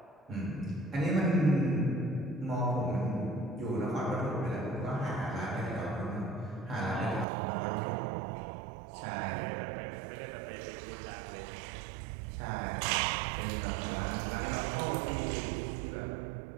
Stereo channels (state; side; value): drops out; left; at 7.2 s